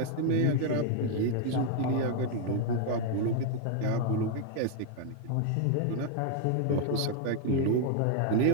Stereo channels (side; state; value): both; different; correlation 0.00